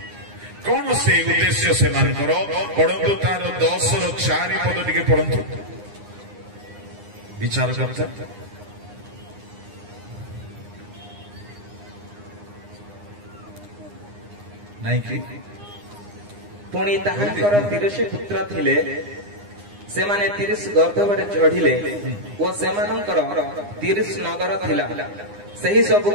କଣ ସେ ଉଦ୍ଦେଶ୍ୟ ସେମାନଙ୍କର? ପଢନ୍ତୁ ତାର 10ର 4 ପଦ ଟିକେ ପଢନ୍ତୁ। ବିଚାରକର୍ତ୍ତା ନାଇଁ କି? ପୁଣି ତାହାଙ୍କର 30 ପୁତ୍ର ଥିଲେ, ସେମାନେ 30 ଗର୍ଦ୍ଧବରେ ଚଢିଲେ ଓ ସେମାନଙ୍କର 30 ନଗର ଥିଲା। ସେହି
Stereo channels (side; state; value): left; late; 9.8 ms